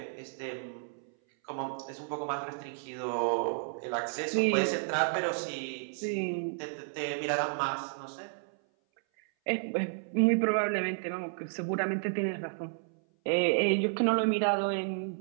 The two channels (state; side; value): silent; left; 57 dB below the other